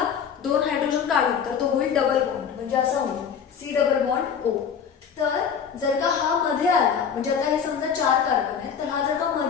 2 हायड्रोजन काढून तर तो होईल डबल बॉन्ड, म्हणजे असा होईल C डबल बॉन्ड O. तर जर का हा मध्ये आला, म्हणजे आता हे समजा 4 कार्बन आहेत, तर हा जर का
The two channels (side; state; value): right; quieter; 7.2 dB